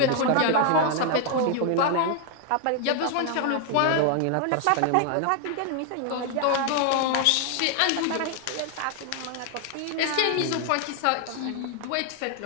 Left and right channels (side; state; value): both; different; correlation 0.00